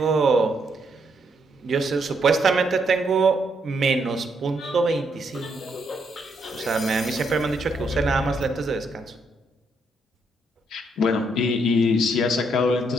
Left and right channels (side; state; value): both; normal; correlation 0.75